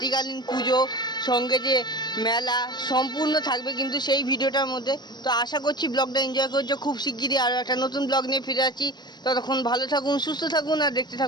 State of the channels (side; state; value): right; late; 0.21 ms